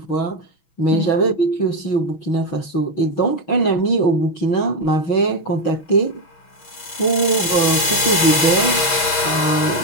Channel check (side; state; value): right; late; 6.2 ms